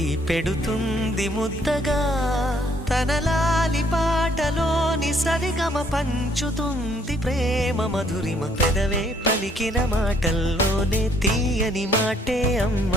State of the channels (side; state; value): both; normal; correlation 0.65